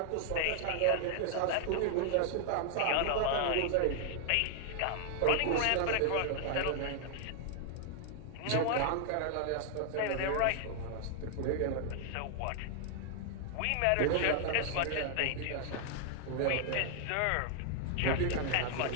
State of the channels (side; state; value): both; different; correlation 0.00